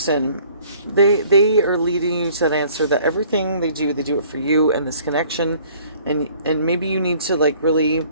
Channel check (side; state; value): both; inverted; correlation -0.56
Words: they are leading you to that answer that everything they do it for you and this connection. And maybe you need to, like, really